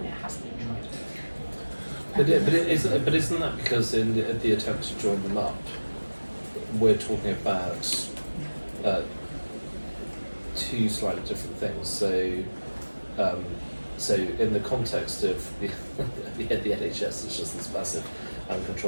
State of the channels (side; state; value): both; inverted; correlation -1.00